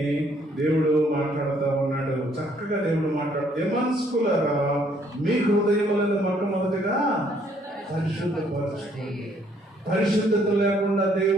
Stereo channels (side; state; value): both; normal; correlation 0.65